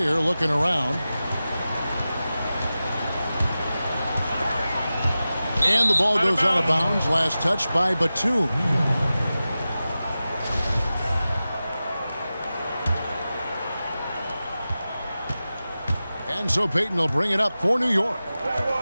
looking around. And the ball goes out of bounds. Last touch by Batum. And so Payton will bring it up for New York.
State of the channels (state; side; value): inverted; both; correlation -0.94